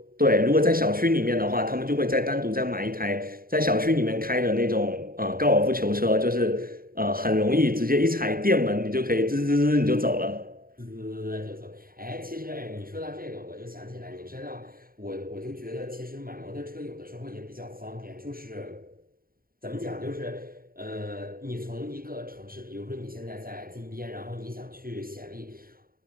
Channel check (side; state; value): left; late; 0.42 ms